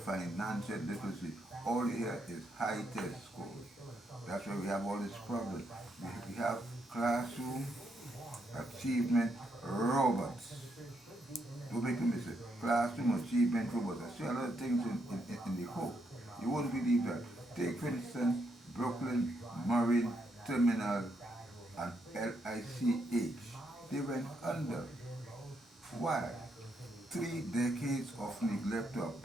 literacy. All here is high test scores. That's why we have all these problems. We have classroom achievement robots. Don't make a mistake. Classroom achievement robots. I see a lot of things in the hope. You won't believe that. Take, for instance, Brooklyn Marine Terminal and LICH. They went under. Why? 3 decades of neglect to a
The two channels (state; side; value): normal; both; correlation 0.78